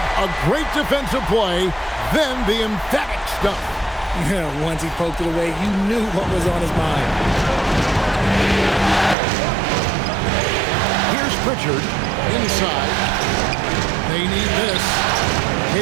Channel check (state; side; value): drops out; left; at 9.2 s